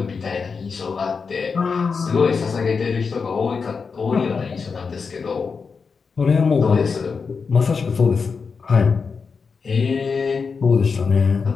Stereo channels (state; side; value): quieter; right; 5.2 dB